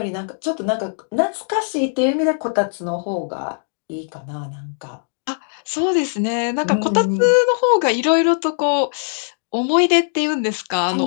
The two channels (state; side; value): silent; right; digital silence